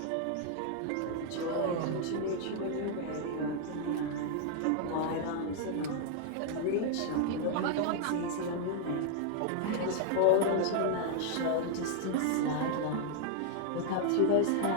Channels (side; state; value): both; different; correlation 0.00